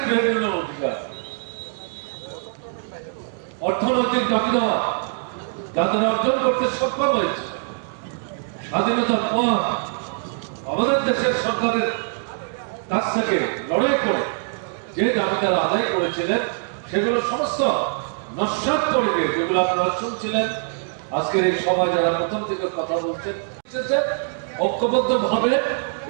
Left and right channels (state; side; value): silent; left; digital silence